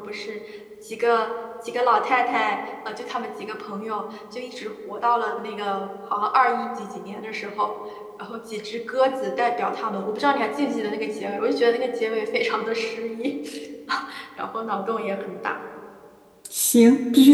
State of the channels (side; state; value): both; identical; correlation 1.00